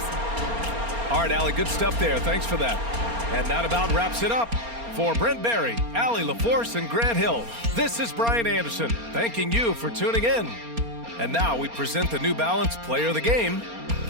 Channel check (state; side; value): late; left; 4.3 ms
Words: All right, Allie, good stuff there. Thanks for that. And that about wraps it up. For Brent Barry, Allie LaForce, and Grant Hill, this is Brian Anderson, thanking you for tuning in. And now we present the New Balance Player of the Game,